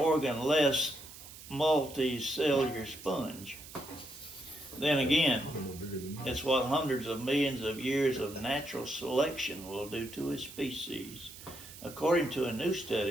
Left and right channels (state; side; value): noise; right; hiss, 16 dB below the sound